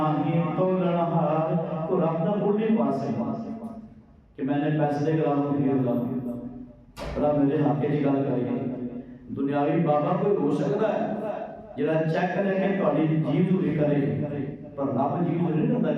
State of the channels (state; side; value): identical; both; correlation 1.00